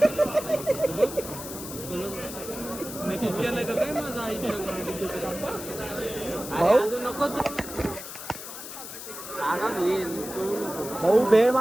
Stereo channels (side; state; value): left; noise; hiss, 10 dB below the sound